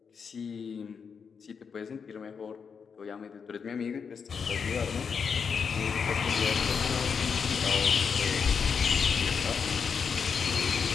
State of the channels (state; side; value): quieter; right; 6.2 dB